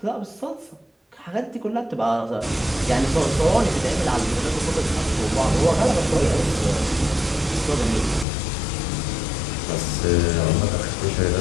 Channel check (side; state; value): right; drops out; at 8.2 s